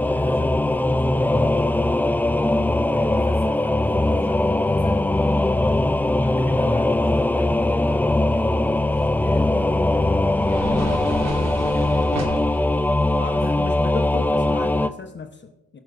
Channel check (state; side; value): normal; both; correlation 0.93